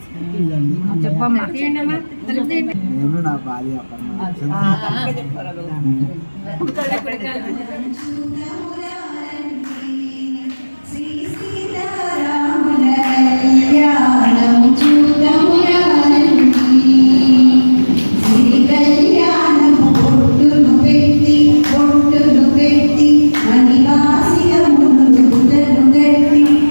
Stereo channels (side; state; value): both; inverted; correlation -1.00